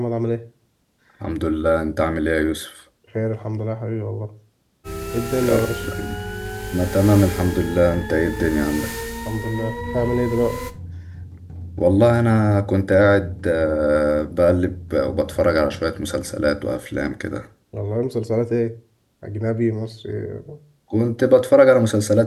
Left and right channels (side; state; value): both; identical; correlation 1.00